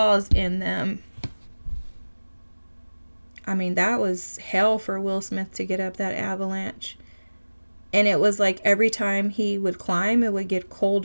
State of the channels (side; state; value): both; inverted; correlation -1.00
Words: in them. I mean, that was hell for Will Smith to get up that avalanche. And it was like every time he would climb, it would get